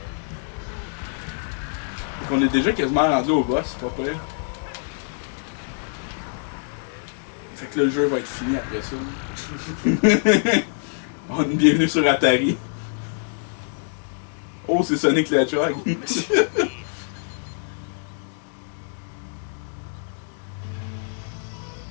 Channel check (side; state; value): right; silent; digital silence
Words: Donc on est déjà quasiment rendu au boss, c'est pas prêt. Fait que là, le jeu va être fini après ça. On est bienvenue sur Atari. Oh, c'est Sonic le Hedgehog.